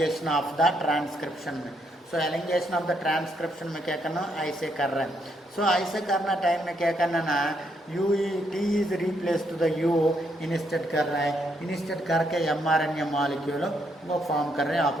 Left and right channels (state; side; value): normal; both; correlation 0.75